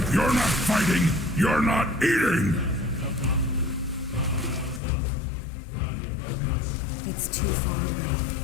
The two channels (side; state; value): right; drops out; at 4.8 s